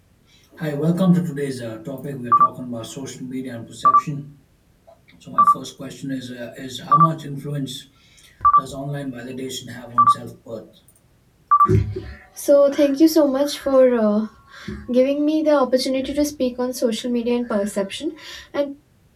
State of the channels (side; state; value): both; identical; correlation 1.00